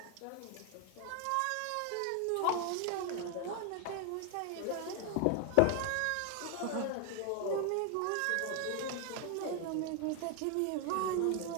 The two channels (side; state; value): both; different; correlation 0.01